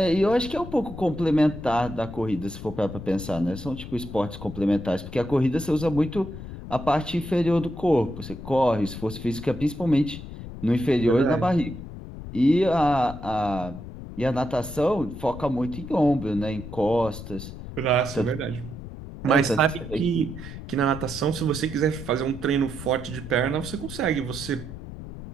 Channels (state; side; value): noise; left; rumble, 11 dB below the sound